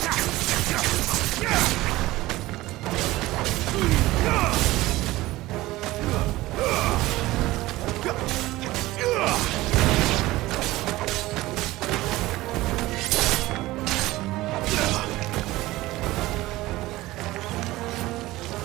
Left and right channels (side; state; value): left; quieter; 18.1 dB